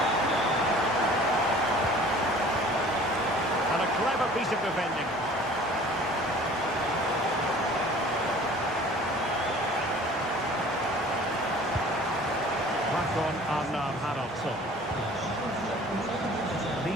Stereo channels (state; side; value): normal; both; correlation 0.48